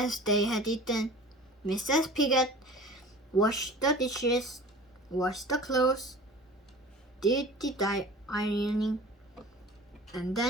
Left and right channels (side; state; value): both; normal; correlation 0.41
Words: they had eaten, Mrs. Pigget washed the dishes, washed the clothes, did the ironing, and